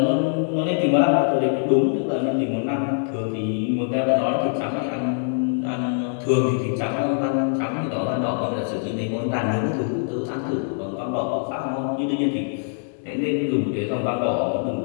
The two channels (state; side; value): silent; right; digital silence